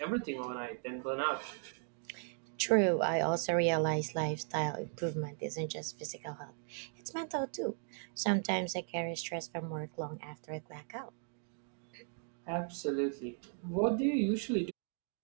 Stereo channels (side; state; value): left; silent; 53 dB below the other